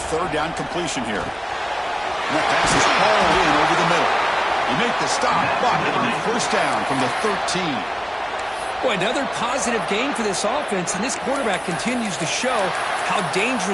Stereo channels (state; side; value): identical; both; correlation 1.00